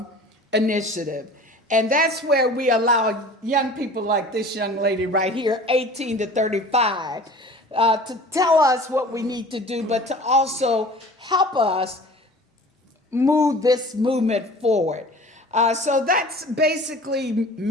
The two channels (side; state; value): both; normal; correlation 0.43